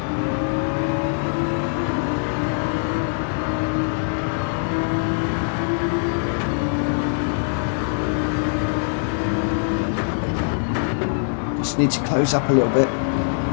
Just need to close up a little bit.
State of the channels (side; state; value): right; silent; digital silence